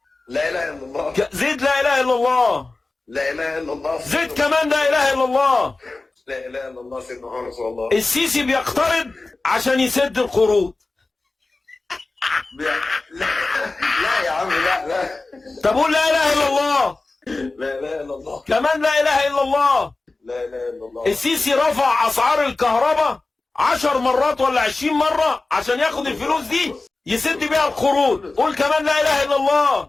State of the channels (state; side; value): quieter; right; 3.4 dB